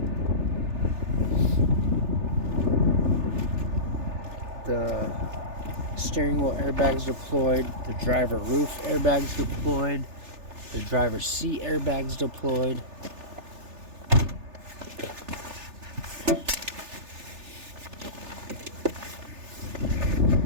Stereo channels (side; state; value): left; late; 3.4 ms